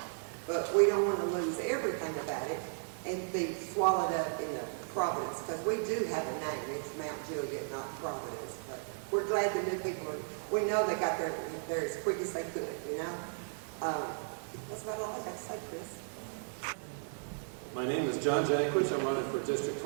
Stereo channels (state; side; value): silent; left; digital silence